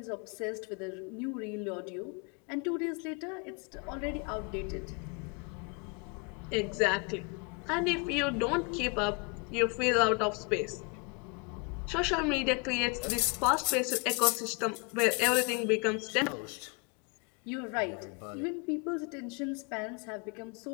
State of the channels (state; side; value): quieter; right; 32.6 dB